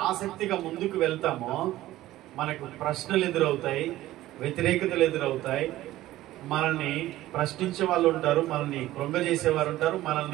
ఆసక్తిగా ముందుకు వెళ్తామో మనకు ప్రశ్నలు ఎదురవుతాయి, వ్యతిరేకతలు ఎదురవుతాయి, మనల్ని ప్రశ్నించే వాళ్ళు ఉంటారు, మనల్ని కృంగజేసేవారు ఉంటారు,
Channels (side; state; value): left; quieter; 15.5 dB